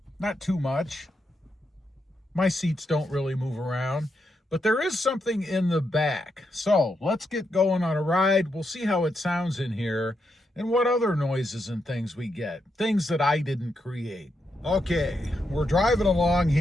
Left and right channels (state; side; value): normal; both; correlation 0.82